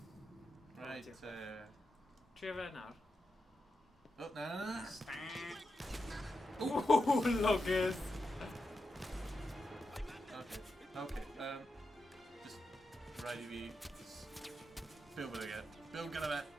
Right, Trio fe nawr. Oh, na. Ooh, luggers. Okay, just ready to just build with it again. Build good of it.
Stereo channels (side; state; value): both; normal; correlation 0.88